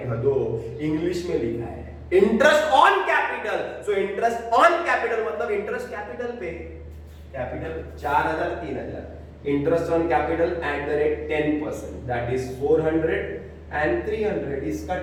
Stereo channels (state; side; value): identical; both; correlation 1.00